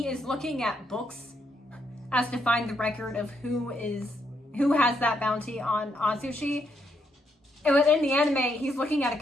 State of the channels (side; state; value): both; normal; correlation 0.77